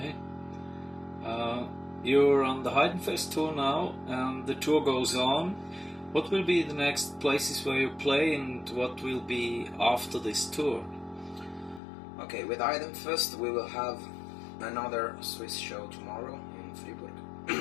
You're on the Heidenfest tour now, and the tour goes on. What will be the next places where you play, and what will be after this tour? Okay, with Heidenfest we will have another Swiss show tomorrow in Fribourg.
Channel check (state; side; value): drops out; right; at 11.8 s